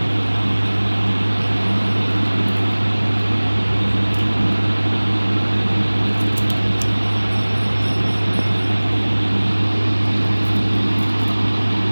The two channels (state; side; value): inverted; both; correlation -1.00